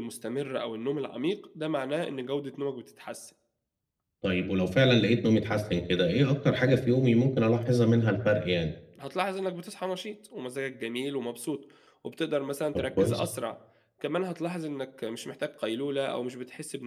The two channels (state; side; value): identical; both; correlation 1.00